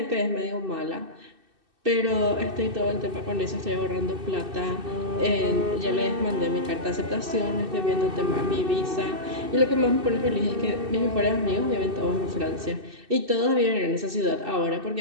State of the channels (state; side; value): late; left; 2.6 ms